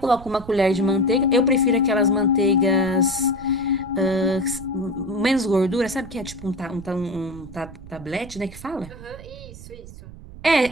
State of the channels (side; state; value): right; noise; rumble, 16 dB below the sound